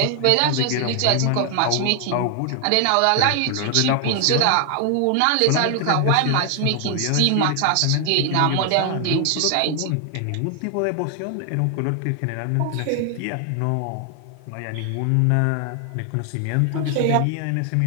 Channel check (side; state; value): both; different; correlation 0.00